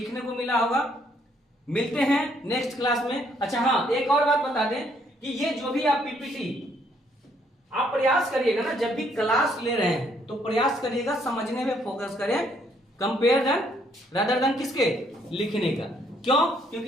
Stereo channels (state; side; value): normal; both; correlation 0.68